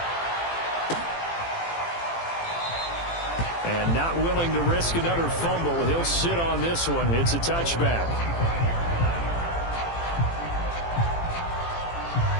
And not willing to risk another fumble. He'll sit on this one. It's a touchback.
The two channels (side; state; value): right; late; 18 ms